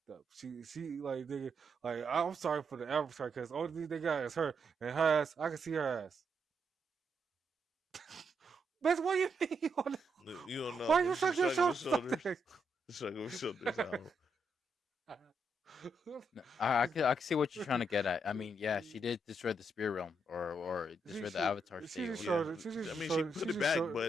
She like nigga like I'm sorry for the avatar because only thing they got is her and her ass. I can see her ass. Bitch, what you mean? you don't know. Why you suck She's your shrugging her shoulders like shoulders. that? Shrugging her shoulders. No, I can see what you're trying to get at. I mean, yeah, she did destroy the spirit realm or She destroy the she avatar she state just or Yeah, showed whatever. it. She I just mean, she showed it. put She it just back, showed but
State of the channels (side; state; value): both; normal; correlation 0.79